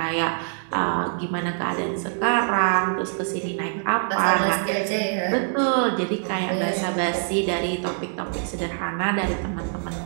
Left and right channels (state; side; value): silent; left; 62 dB below the other